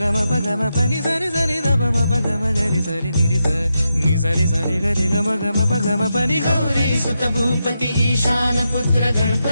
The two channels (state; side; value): inverted; both; correlation -0.86